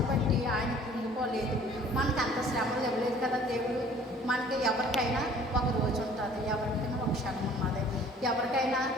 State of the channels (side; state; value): both; normal; correlation 0.52